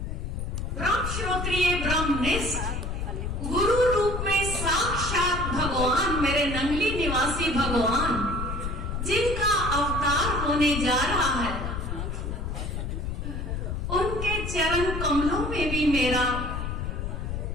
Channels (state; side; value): noise; left; rumble, 4 dB below the sound